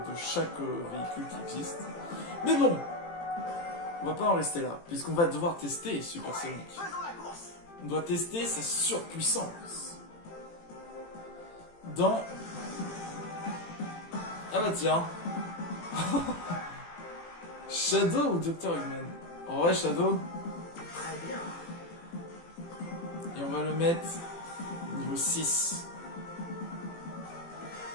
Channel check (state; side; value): late; right; 18 ms